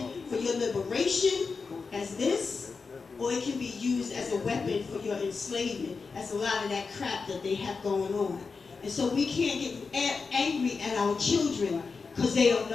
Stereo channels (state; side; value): quieter; right; 4.8 dB